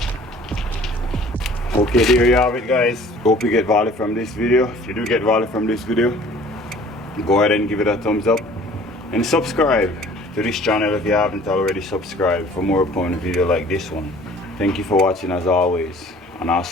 Okay, there you have it, guys. Hope you get value from this video. If you do get value from this video, go ahead and give it a thumbs up and subscribe to this channel if you haven't already subscribed for more upon video like this one. Thank you for watching as always, and I'll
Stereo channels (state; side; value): normal; both; correlation 0.51